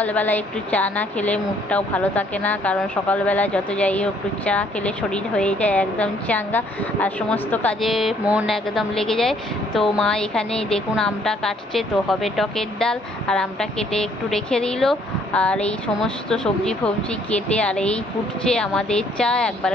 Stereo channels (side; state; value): both; normal; correlation 0.64